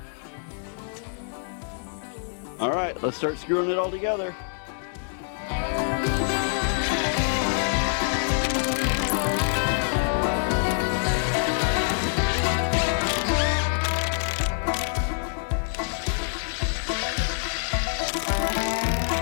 All right, let's start screwing it all together.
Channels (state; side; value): silent; right; 61 dB below the other